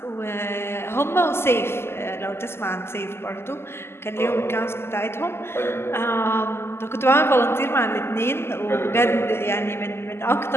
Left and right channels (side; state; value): right; late; 0.12 ms